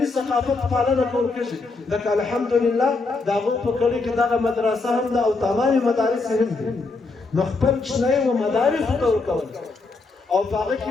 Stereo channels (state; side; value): quieter; right; 3.8 dB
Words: ثقافت پالنه کول کېږي لکه الحمدلله دا په کلی کې دغه مدرسه هم ده او تمامي مدارس هم دي نو خپل کښنۍ و مدارس ته ورکول او په هغه کې